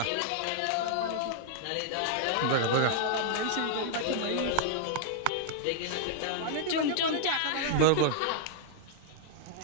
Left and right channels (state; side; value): different; both; correlation -0.01